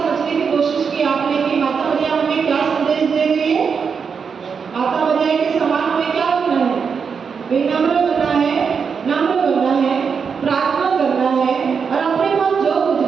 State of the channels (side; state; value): left; quieter; 6.1 dB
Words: की कोशिश की आपने कि माता मरियम हमें क्या संदेश दे रही है? माता मरियम के समान हमें क्या बनना है? विनम्र बनना है, नम्र बनना है, प्रार्थना करना है और अपने पास जो कुछ